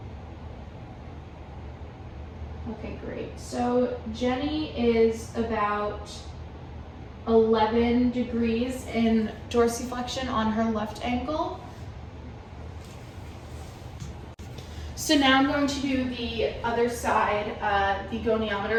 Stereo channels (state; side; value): identical; both; correlation 1.00